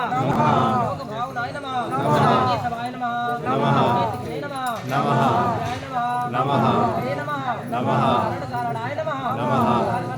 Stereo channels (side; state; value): both; identical; correlation 1.00